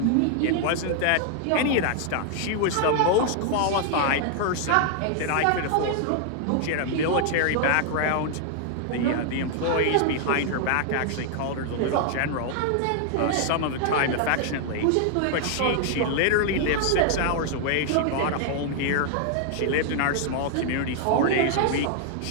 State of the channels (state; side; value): different; both; correlation 0.00